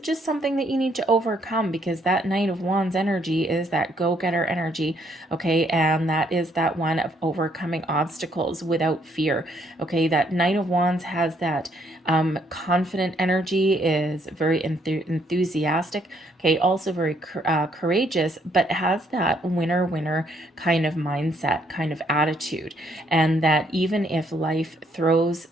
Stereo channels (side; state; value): both; normal; correlation 0.69